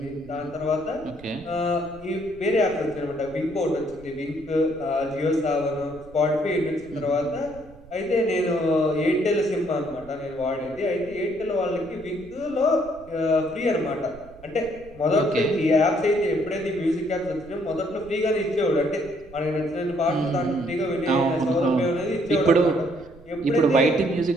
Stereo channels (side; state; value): right; noise; rumble, 22 dB below the sound